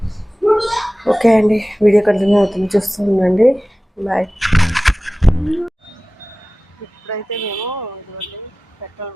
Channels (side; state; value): both; normal; correlation 0.97